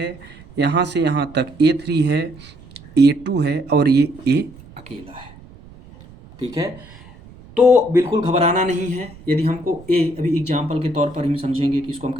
यहाँ से यहाँ तक A3 है, A2 है, और ये A अकेला है, ठीक है। तो बिल्कुल घबराना नहीं है। यदि हमको ए, अभी एग्जाम्पल के तौर पर हम समझेंगे कि इसको हम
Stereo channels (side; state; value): right; noise; rumble, 21 dB below the sound